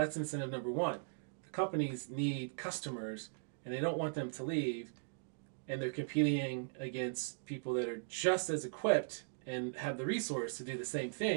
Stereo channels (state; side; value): silent; left; digital silence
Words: incentive number one. The companies need customers and they don't want them to leave, and they're competing against people that are just as equipped and have the resource to do the same